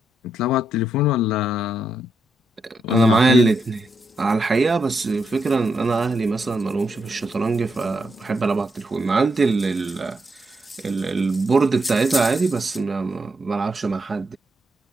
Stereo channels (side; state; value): both; normal; correlation 0.81